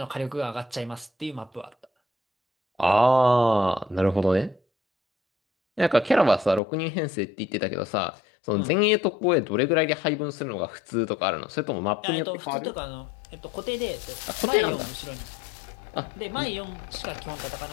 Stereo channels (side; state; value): right; drops out; at 6.6 s